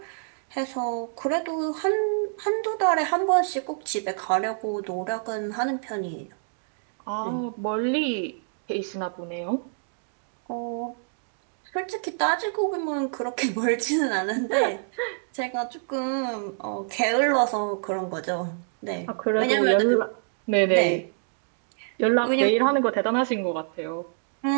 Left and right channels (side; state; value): left; silent; digital silence